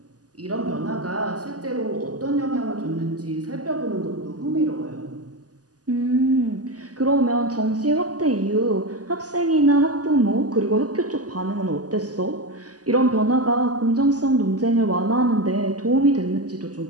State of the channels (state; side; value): late; left; 0.67 ms